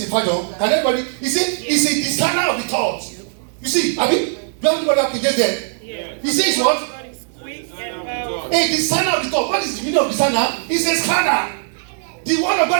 version, can everybody? He said, "It's a discerner of the thoughts." You see, I mean, do everybody have King James there? Yeah. He says what? A discerner of the thought. What is the meaning of discerner? It's a scanner. The word of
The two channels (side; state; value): left; silent; digital silence